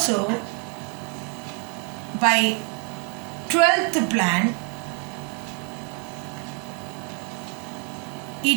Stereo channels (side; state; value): left; quieter; 37.3 dB